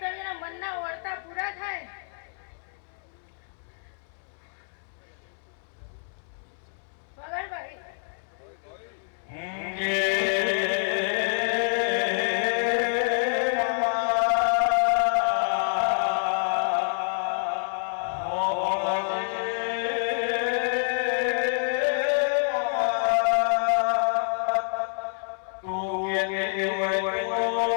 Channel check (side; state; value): right; silent; 60 dB below the other